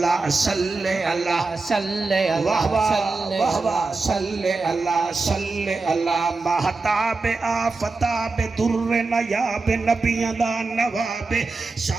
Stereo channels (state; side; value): quieter; left; 3.8 dB